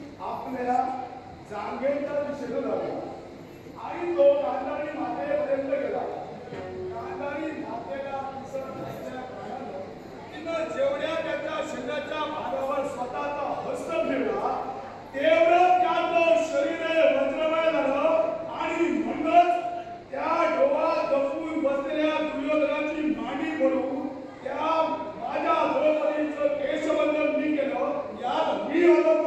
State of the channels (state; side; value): identical; both; correlation 1.00